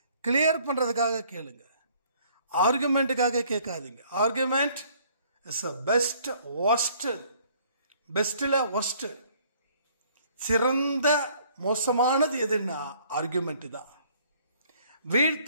கிளியர் பண்ணுறதுக்காக கேளுங்க, ஆர்குமெண்ட்டுக்காக கேட்காதீங்க. Argument is a best worst, பெஸ்ட்டில் ஒஸ்ட், சிறந்த மோசமானது எதுன்னா ஆர்குமெண்ட் தான்.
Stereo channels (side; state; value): both; inverted; correlation -0.60